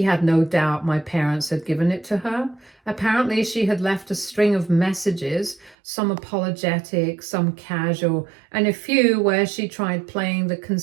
had no doubt my parents had given it to her. Apparently, she had left a string of messages, some apologetic, some casual, and a few where she tried playing the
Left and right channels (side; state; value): left; drops out; at 5.8 s